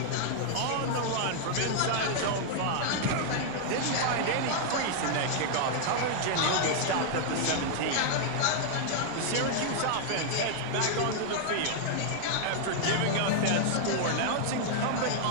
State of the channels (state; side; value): different; both; correlation -0.01